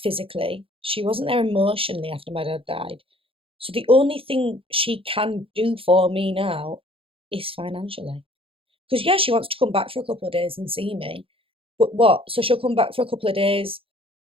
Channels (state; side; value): late; left; 0.27 ms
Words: She wasn't there emotionally after my dad died. So the only thing she can do for me now is financially. Because, yeah, she wants to come back for a couple of days and see me. But what? So she'll come back for a couple of days,